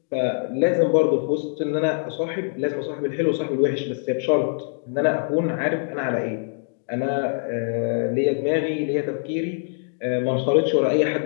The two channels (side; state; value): right; silent; digital silence